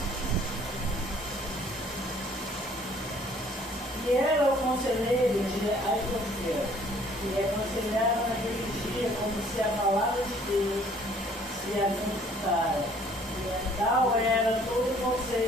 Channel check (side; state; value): both; normal; correlation 0.58